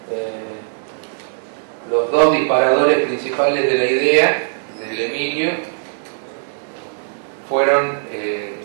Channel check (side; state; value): left; silent; 60 dB below the other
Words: Los dos disparadores principales de la idea del Emilio fueron